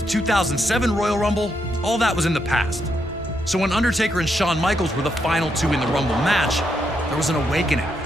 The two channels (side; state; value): both; normal; correlation 0.80